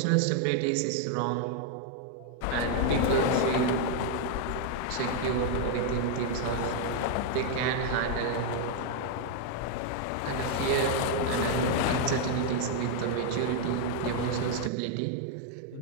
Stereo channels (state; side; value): different; both; correlation 0.00